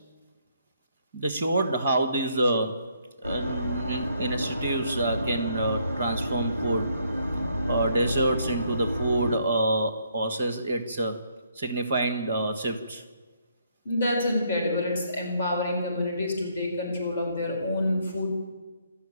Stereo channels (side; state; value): both; inverted; correlation -0.70